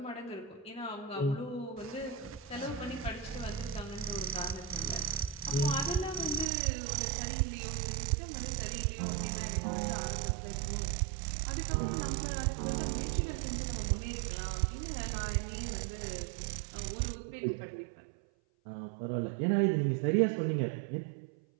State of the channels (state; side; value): drops out; left; at 6.5 s